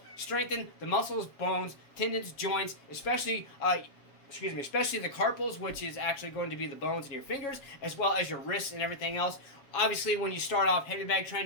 strengthen the muscles, bones, tendons, joints, especially the carpals, which is actually going to be the bones in your fingers, as well as your wrists and everything else. Obviously, when you start off heavy bag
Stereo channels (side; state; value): right; late; 7.2 ms